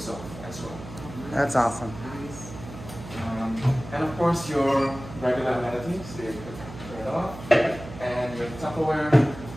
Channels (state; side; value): noise; right; hum, 13 dB below the sound